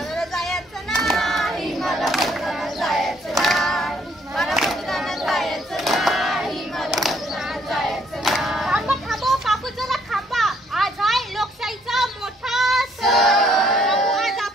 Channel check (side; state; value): both; normal; correlation 0.67